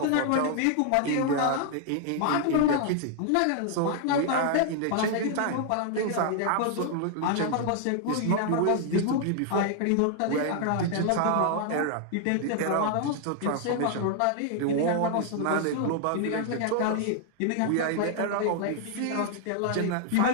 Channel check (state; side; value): different; both; correlation 0.00